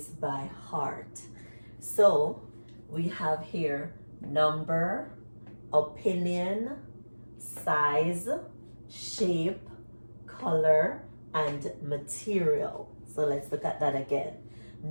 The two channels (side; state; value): both; inverted; correlation -1.00